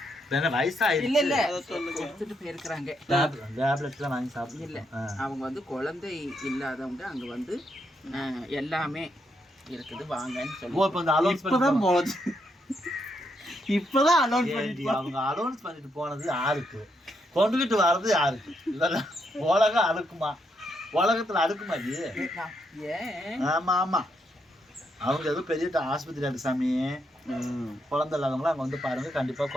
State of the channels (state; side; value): normal; both; correlation 0.78